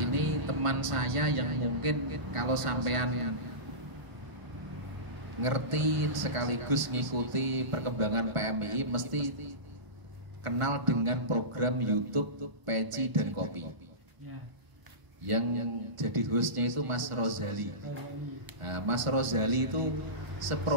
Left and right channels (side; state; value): left; late; 1.5 ms